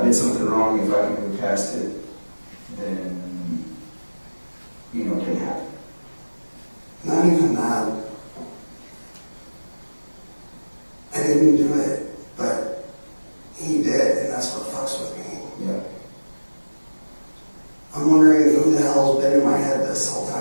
did something wrong. If I can move past it, then, it didn't happen. Not even that. I didn't do it, but he did, and that's what fucks with me. Yeah. I'm wondering who the hell's been in my head this whole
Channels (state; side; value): inverted; both; correlation -1.00